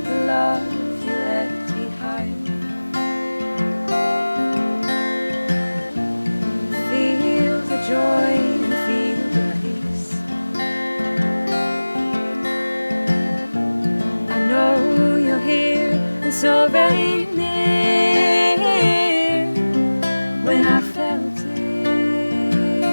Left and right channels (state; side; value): inverted; both; correlation -1.00